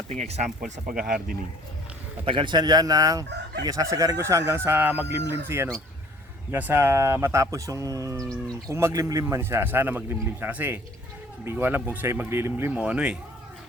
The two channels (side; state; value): both; normal; correlation 0.54